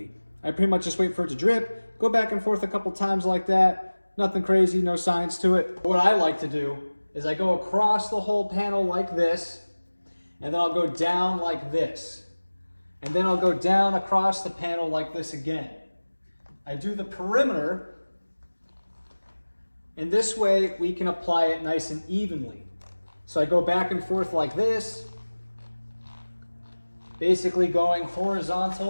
I pretty much just wait for it to drip, go back and forth a couple times like that. Nothing crazy, no science to it. What I like to do is I go across the whole panel like this, and then I'll go down like this. And then I'll go down across the panel like this again. I do the perimeter, and this way we can apply it nice and evenly. So I go back and forth like this, basically going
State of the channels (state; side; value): inverted; both; correlation -1.00